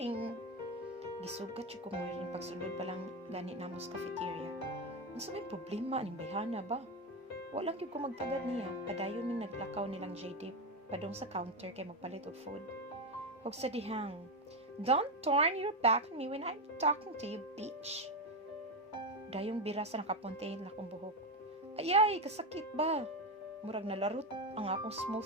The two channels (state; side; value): normal; both; correlation 0.12